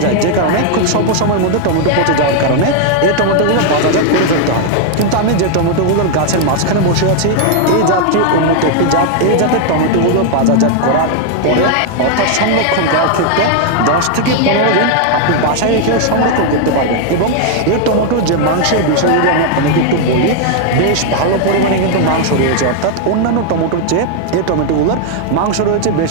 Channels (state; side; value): different; both; correlation 0.00